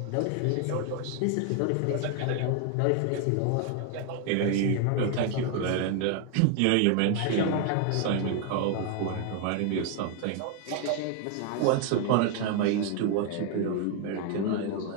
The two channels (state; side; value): different; both; correlation 0.01